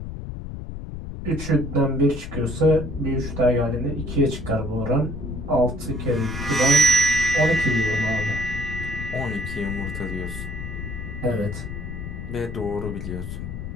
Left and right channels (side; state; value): left; noise; rumble, 8 dB below the sound